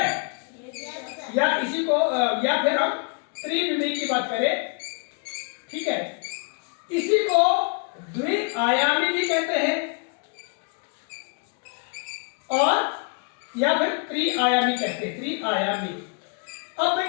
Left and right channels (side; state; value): right; quieter; 34.8 dB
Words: या इसी को या फिर हम त्रिविमी की बात करें, ठीक है, इसी को द्विआयामी भी कहते हैं और या फिर त्रिआयामी कहते हैं, त्रिआयामी। अब